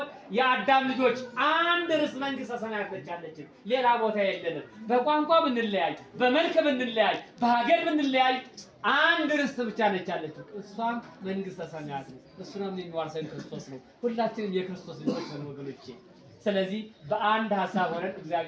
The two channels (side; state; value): both; identical; correlation 1.00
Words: የአዳም ልጆች አንድ ርስ መንግስተ ሰማያት ነች ያለችን፣ ሌላ ቦታ የለንም። በቋንቋ ብንለያይ፣ በመልክ ብንለያይ፣ በሀገር ብንለያይ አንድ ርስት ብቻ ነች ያለችው፣ እሷም መንግስተ ሰማያት ነው። እሱንም የሚዋርሰን ክርስቶስ ነው። ሁላችንም የክርስቶስ ልጆች ነን ወገኖቼ። ስለዚህ በአንድ ሀሳብ ሆነን